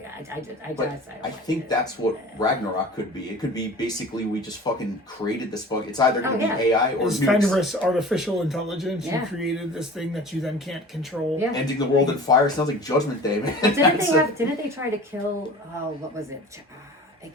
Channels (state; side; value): normal; both; correlation 0.41